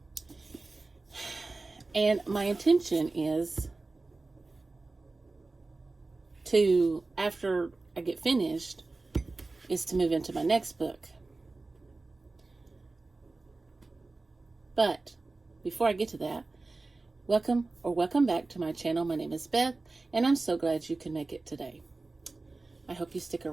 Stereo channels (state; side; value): quieter; left; 3.4 dB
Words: And my intention is to, after I get finished, is to move into my next book. But before I get to that, welcome back to my channel. My name is Beth, and I'm so glad you can make it today. I hope you stick